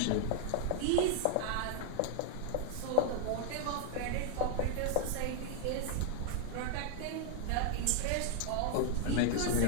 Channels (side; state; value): both; different; correlation -0.01